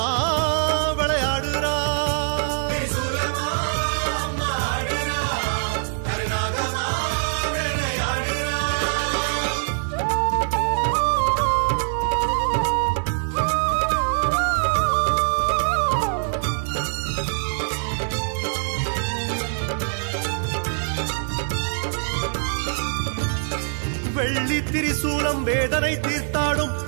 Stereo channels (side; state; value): left; silent; digital silence